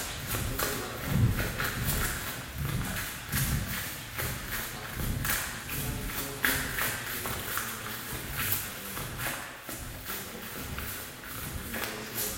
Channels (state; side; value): identical; both; correlation 1.00